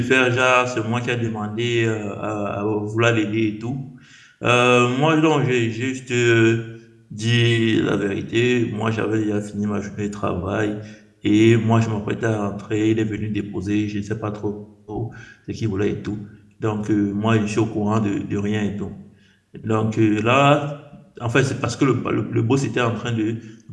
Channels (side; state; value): both; identical; correlation 1.00